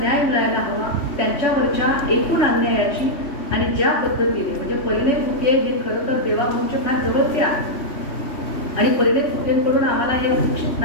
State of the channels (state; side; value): late; right; 3.2 ms